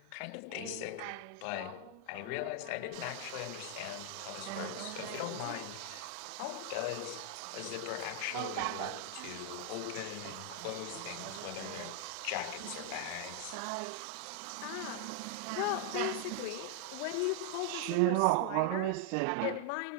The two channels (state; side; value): different; both; correlation 0.00